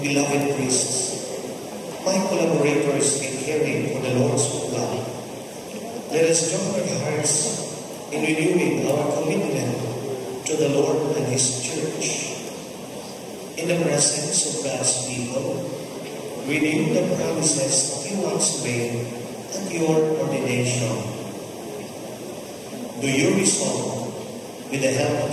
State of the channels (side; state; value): both; identical; correlation 1.00